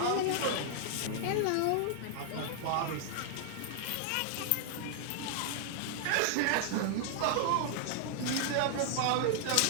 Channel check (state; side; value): different; both; correlation 0.00